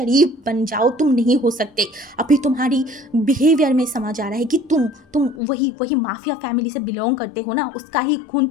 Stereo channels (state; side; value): drops out; right; at 5.4 s